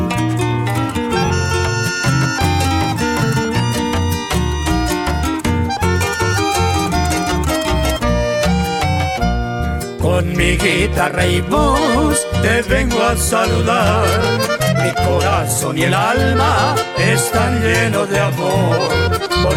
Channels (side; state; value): both; identical; correlation 1.00